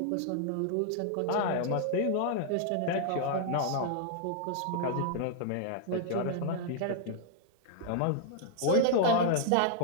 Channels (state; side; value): different; both; correlation -0.01